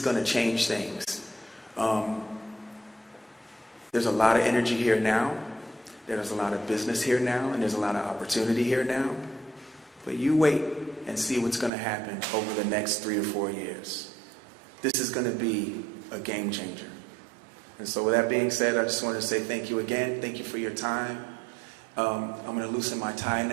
to change things. There's a lot of energy here now. There's a lot of business here now, and there's a lot of opportunity here now. But you wait and see what's going to happen over the next 3 to 4 years. This is going to be a game changer. And so with that being said, I just wanted to say thank you again. Thank you for your time. I'm going to loosen my tie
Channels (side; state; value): left; drops out; at 11.7 s